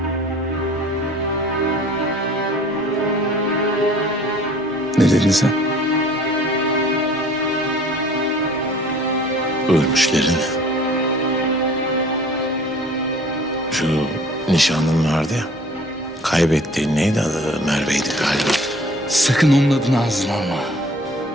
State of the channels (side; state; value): both; normal; correlation 0.50